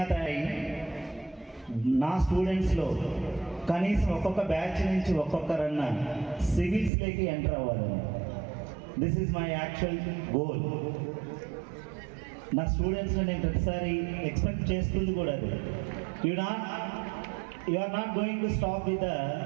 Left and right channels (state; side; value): drops out; left; at 6.9 s